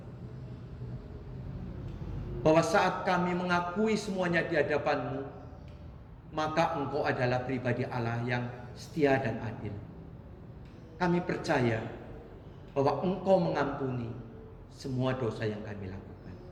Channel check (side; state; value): both; identical; correlation 1.00